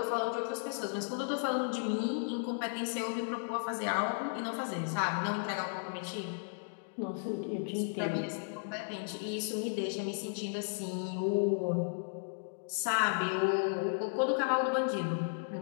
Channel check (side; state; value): right; silent; digital silence